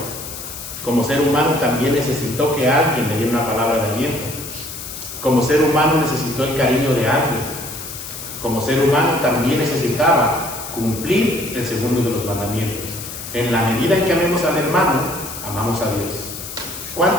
Como ser humano también necesitó que alguien le diera una palabra de aliento. Como ser humano necesitó el cariño de alguien. Como ser humano también necesitaba cumplir el segundo de los mandamientos. En la medida en que amemos al hermano, amamos a Dios.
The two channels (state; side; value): noise; left; hiss, 10 dB below the sound